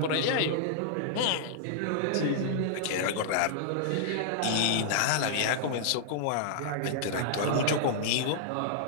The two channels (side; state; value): both; different; correlation -0.01